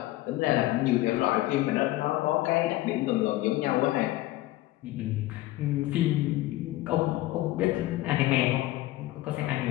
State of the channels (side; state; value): right; quieter; 16.8 dB